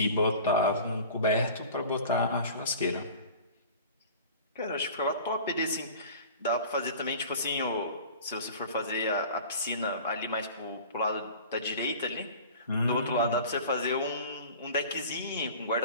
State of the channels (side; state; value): both; inverted; correlation -0.41